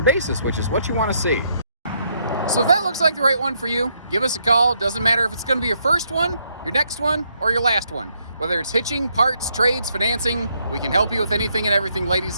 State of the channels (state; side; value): inverted; both; correlation -0.75